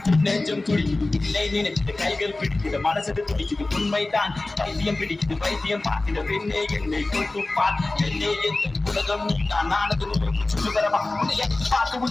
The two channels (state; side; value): quieter; right; 3.0 dB